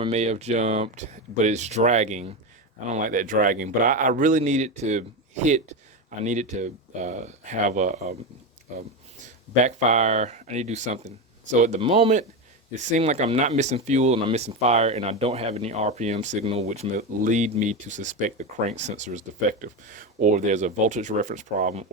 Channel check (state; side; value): normal; both; correlation 0.15